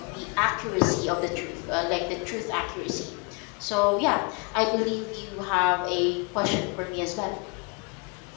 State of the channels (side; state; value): right; quieter; 32.7 dB